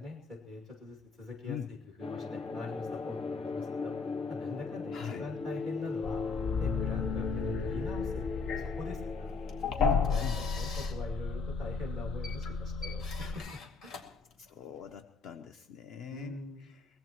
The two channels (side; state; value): right; quieter; 4.3 dB